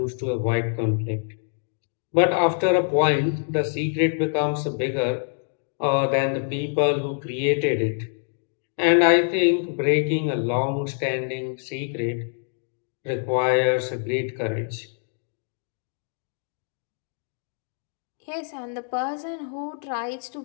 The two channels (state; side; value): silent; right; 62 dB below the other